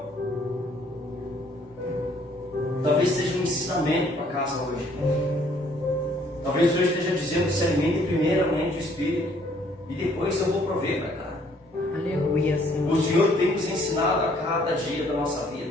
Talvez seja um ensinamento para casa hoje. Talvez o Senhor esteja dizendo: se alimente primeiramente o Espírito, e depois eu vou prover para cá. Aleluia, Senhor. O Senhor tem nos ensinado a cada dia da nossa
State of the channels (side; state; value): both; normal; correlation 0.63